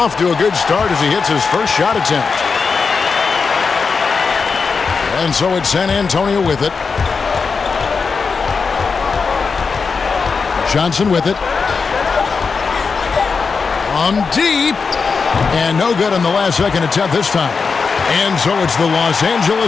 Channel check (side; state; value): right; quieter; 5.0 dB